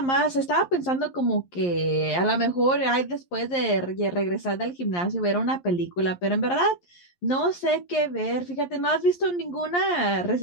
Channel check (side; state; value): right; late; 11 ms